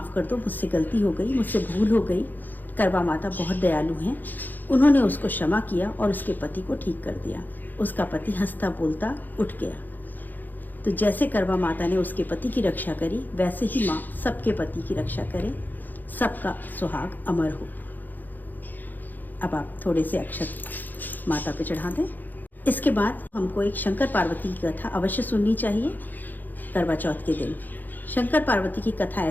कर दो, मुझसे गलती हो गई, मुझसे भूल हो गई। करवा माता बहुत दयालु हैं। उन्होंने उसको क्षमा किया और उसके पति को ठीक कर दिया। उसका पति हंसता बोलता उठ गया। तो जैसे करवा माता ने उसके पति की रक्षा करी, वैसे ही माँ सबके पति की रक्षा करे, सबका सुहाग अमर हो। अब आप थोड़े से अक्षत माता पे चढ़ा दें। इसके बाद हमको एक शंकर पार्वती की कथा अवश्य सुननी चाहिए करवा चौथ के दिन। शंकर पार्वती की कथा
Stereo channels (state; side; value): late; right; 0.086 ms